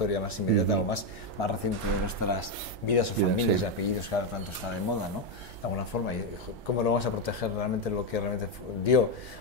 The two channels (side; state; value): right; noise; hum, 20 dB below the sound